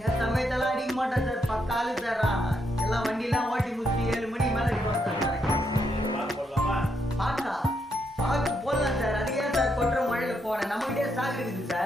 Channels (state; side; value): normal; both; correlation 0.78